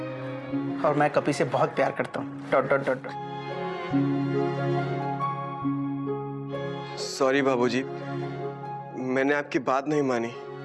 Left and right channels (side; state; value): both; identical; correlation 1.00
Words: और मैं कपी से बहुत प्यार करता हूँ. Dot dot dot dot. Sorry बाबूजी, मैंने आपकी बात नहीं मानी.